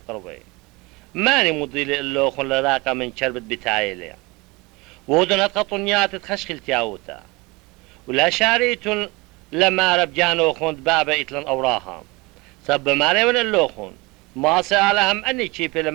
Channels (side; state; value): left; quieter; 24.4 dB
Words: ماني مضيلي اللوخ لراقة من شربت بتايلي ودن هتخطنيات تخشخل تياوتا ولا شاريتن لما ربجانو خوند بابا إتلن أوراهم سب ماري من اللوخون ما سألهم أني كيف